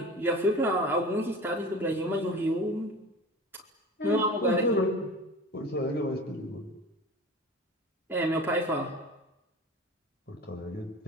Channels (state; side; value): normal; both; correlation 0.36